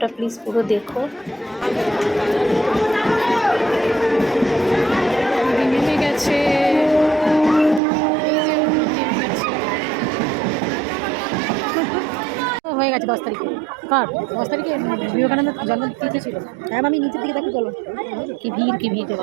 প্লিজ পুরো দেখো। নেমে গেছে, হয়ে গেছে 10 তারিখে। কার 10 তারিখে? বিবেকানন্দ জন্মতিথি ছিল। হ্যাঁ, আমি নিচের দিকে দেখি, চলো। কি ভিড়, কি ভিড় রে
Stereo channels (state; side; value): drops out; left; at 7.8 s